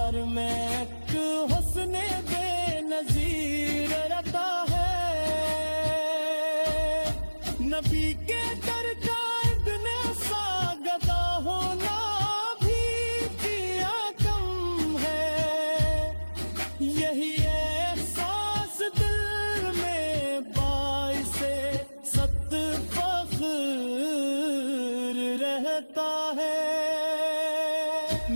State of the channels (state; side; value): inverted; both; correlation -1.00